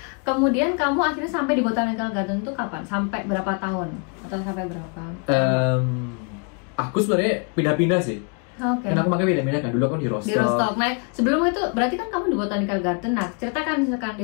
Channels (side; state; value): right; quieter; 37.0 dB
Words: kemudian kamu akhirnya sampai di Botanical Garden itu kapan? Sampai berapa tahun? Atau sampai berapa? Aku sebenarnya pindah-pindah sih. Oke. Karena aku makanya pindah-pindah kan. Dulu aku di Rostock. Di Rostock. Nah, sebelum itu berarti kan kamu di Botanical Garden. Nah, ceritakan misalkan